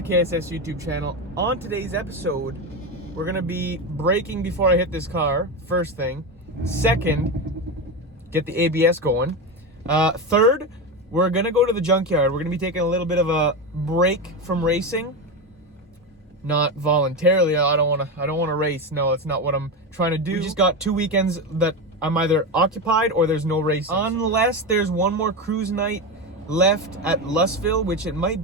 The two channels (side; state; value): both; normal; correlation 0.16